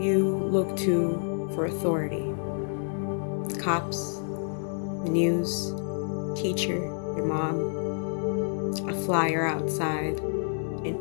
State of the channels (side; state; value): right; silent; 59 dB below the other